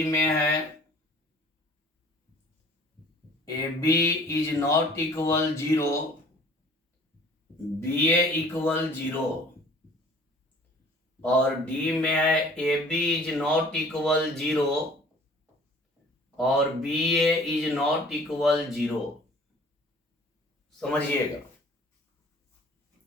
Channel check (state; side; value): normal; both; correlation 0.51